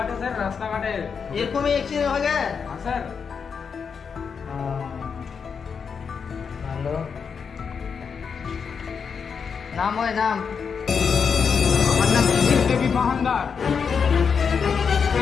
স্যার, রাস্তাঘাটে। এরকমই অ্যাক্সিডেন্ট হয়ে গেছে? হ্যাঁ স্যার। ভালো। নাম হয় নাম? আমার নাম দেবী মহানদার।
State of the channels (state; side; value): quieter; right; 6.2 dB